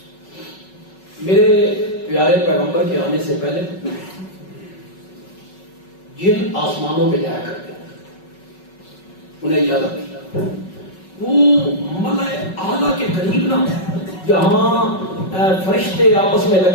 میرے پیارے پیغمبر کے آنے سے پہلے جن آسمانوں پہ جایا کرتے انہیں اجازت دی، وہ ملائے اعلیٰ کے قریب نہ، جہاں فرشتے آپس میں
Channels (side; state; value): right; late; 5.4 ms